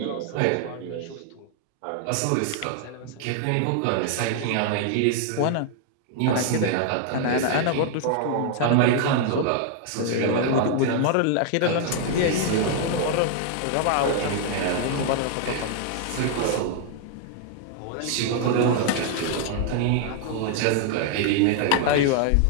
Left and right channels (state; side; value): different; both; correlation 0.00